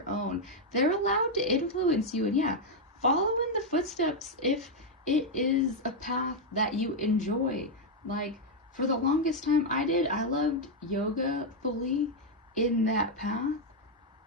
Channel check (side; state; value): both; normal; correlation 0.00